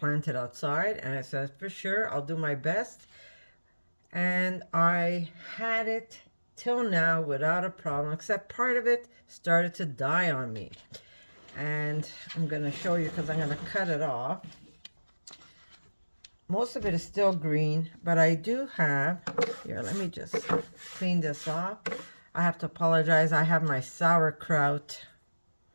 it outside. And I said, for sure, I'll do my best. And I had it till now without a problem, except part of it started to die on me. And I'm going to show you because I'm going to cut it off. Most of it is still green, but I do have, here, let me just clean this off. I have to apologize. I have my sauerkraut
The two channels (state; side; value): inverted; both; correlation -1.00